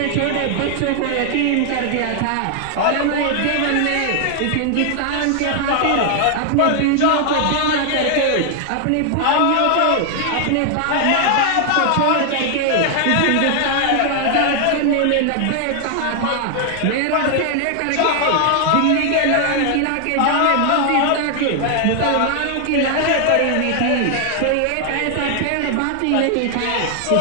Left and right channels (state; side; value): different; both; correlation 0.00